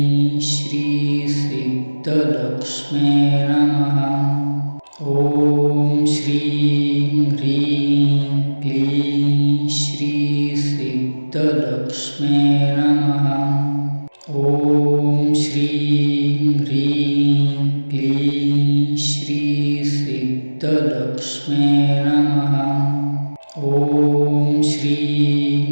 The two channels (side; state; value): both; inverted; correlation -1.00